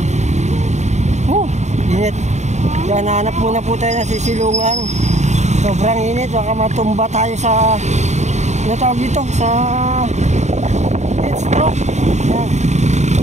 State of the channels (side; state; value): left; late; 0.33 ms